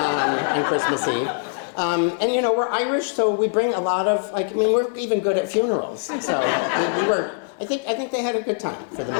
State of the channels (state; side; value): quieter; right; 36.8 dB